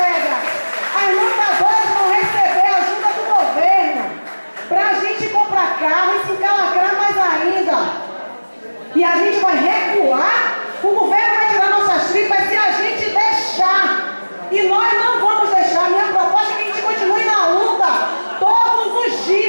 As montadoras vão receber a ajuda do governo para a gente comprar carro e se encalacrar mais ainda. E a gente vai recuar, o governo vai tirar nossas tripas se a gente deixar. E nós não vamos deixar. Minha proposta é que a gente continue na luta todos os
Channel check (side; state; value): both; inverted; correlation -1.00